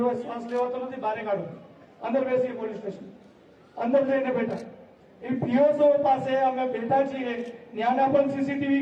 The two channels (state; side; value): identical; both; correlation 1.00